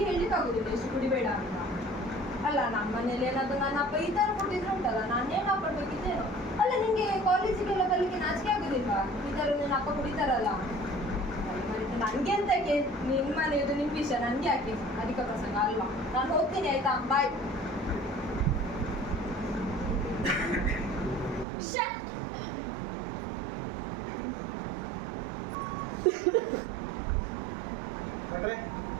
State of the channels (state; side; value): drops out; left; at 21.5 s